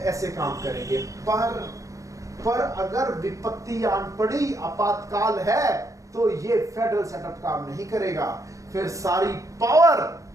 काम करेंगे, पर अगर विपत्ति आन पड़ी, आपातकाल है, तो ये फेडरल सेटअप काम नहीं करेगा। फिर सारी पावर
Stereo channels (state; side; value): late; left; 0.16 ms